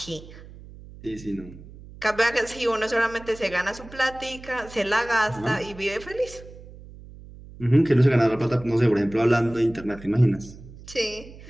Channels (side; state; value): right; noise; hum, 18 dB below the sound